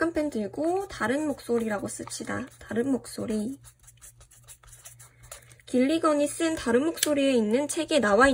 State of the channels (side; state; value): both; identical; correlation 1.00